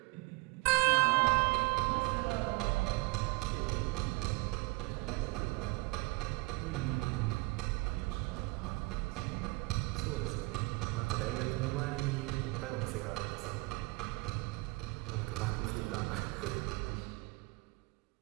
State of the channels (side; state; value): left; quieter; 25.4 dB